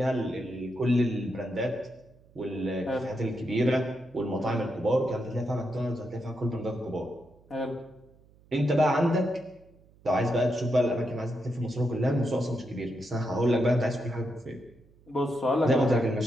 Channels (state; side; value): noise; right; hum, 28 dB below the sound